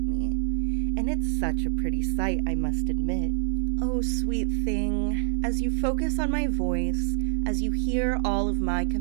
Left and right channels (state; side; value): silent; left; digital silence